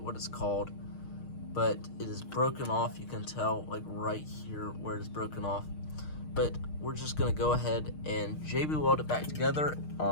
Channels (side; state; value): right; late; 6.5 ms